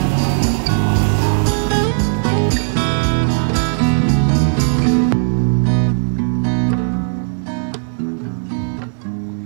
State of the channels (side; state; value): left; silent; digital silence